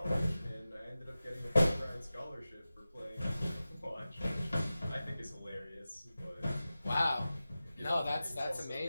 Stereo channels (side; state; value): both; inverted; correlation -0.95